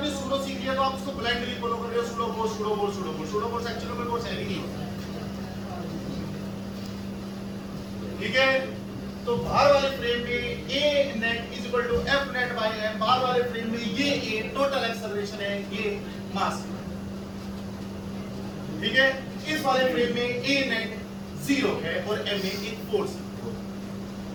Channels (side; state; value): both; identical; correlation 1.00